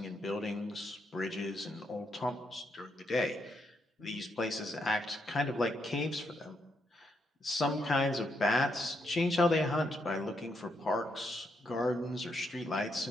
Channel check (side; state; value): both; normal; correlation 0.79